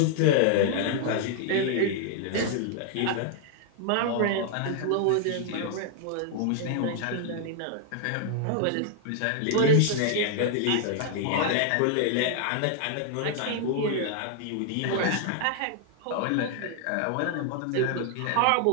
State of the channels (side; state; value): both; different; correlation 0.00